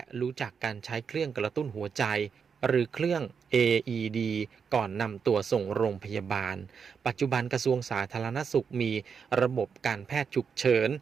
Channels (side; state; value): left; quieter; 6.3 dB